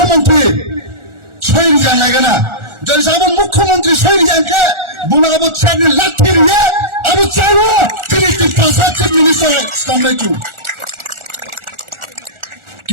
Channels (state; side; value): late; left; 1.4 ms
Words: soiri jan lagana jori se abo mukhyamantri soiri jan ke buna abo chani lathir ye abo chalo tiri ti pasat chief minister stamai tu